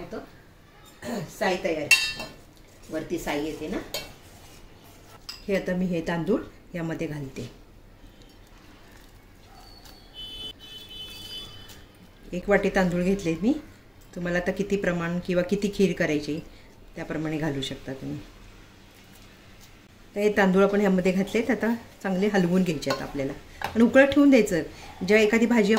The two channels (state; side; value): identical; both; correlation 1.00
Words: साई तयार, वरती साई येते ना. हे आता मी हे तांदूळ यामध्ये घालते. 1 वाटी तांदूळ घेतले मी. तुम्हाला आता किती प्रमाण किंवा किती खीर करायची त्याप्रमाणे घालू शकता तुम्ही. तर हे तांदूळ आपण ह्यामध्ये घातलेत. आता चांगले हलवून घ्यायचे आहेत आपल्याला आणि उकळत ठेवून द्यायचं. जेव्हा एखादी भाजी